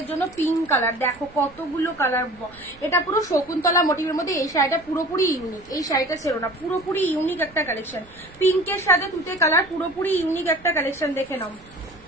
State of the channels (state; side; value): noise; right; rumble, 25 dB below the sound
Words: জন্য পিঙ্ক কালার, দেখো কতগুলো কালার, এটা পুরো শকুন্তলা মোটিভের মধ্যে। এই শাড়িটা পুরোপুরি ইউনিক, এই শাড়িটা ছিল না, পুরোপুরি ইউনিক একটা কালেকশন। পিঙ্কের সাথে তুতে কালার, পুরোপুরি ইউনিক একটা কালেকশন, দেখে নাও,